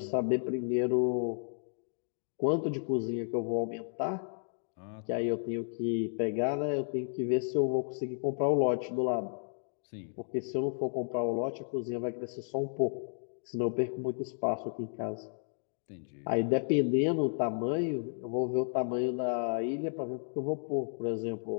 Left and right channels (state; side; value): silent; right; digital silence